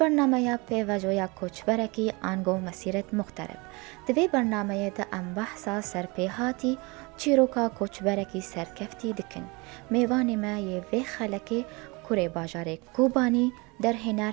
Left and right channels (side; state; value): left; quieter; 27.0 dB